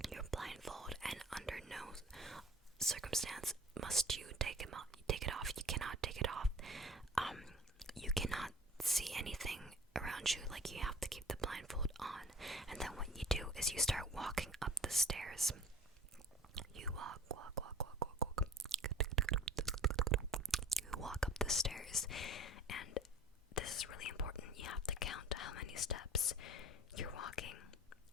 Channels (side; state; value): both; normal; correlation 0.43